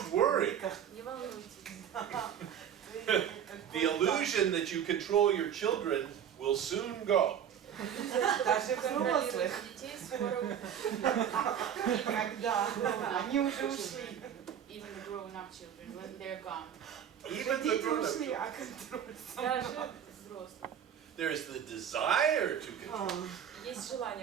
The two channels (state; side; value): quieter; left; 8.9 dB